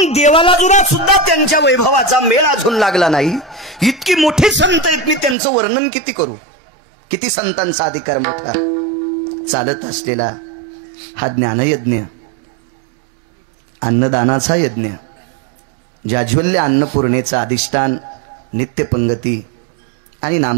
देवाला जुना सुद्धा त्यांच्या वैभवाचा मेळ अजून लागला नाही. इतकी मोठी संत आहेत. मी त्यांचं वर्णन किती करू? किती संतांचा अधिकार मोठा. चालत असलेला हा ज्ञानयज्ञ, अन्नदानाचा यज्ञ, जाज्वल्य अन्नपूर्णेचा अधिष्ठान, नित्यपंगती आणि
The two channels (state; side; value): drops out; left; at 5.4 s